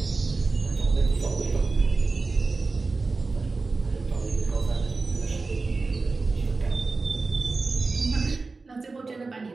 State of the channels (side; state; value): left; quieter; 3.9 dB